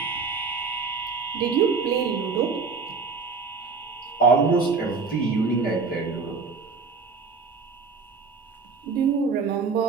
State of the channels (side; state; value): left; quieter; 4.8 dB